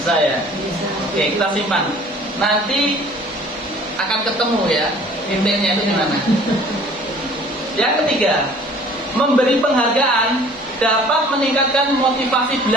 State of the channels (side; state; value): both; normal; correlation 0.51